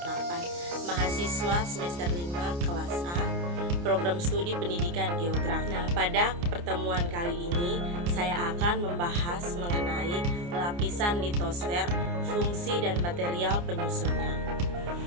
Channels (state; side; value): late; left; 29 ms